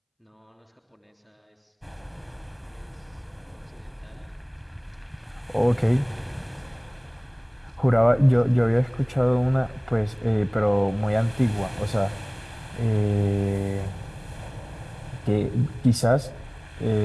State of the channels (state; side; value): identical; both; correlation 1.00